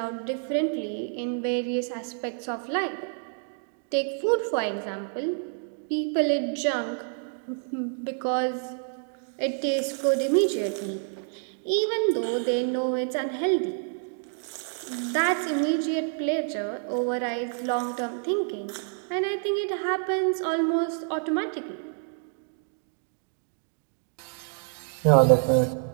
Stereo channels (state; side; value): silent; left; 59 dB below the other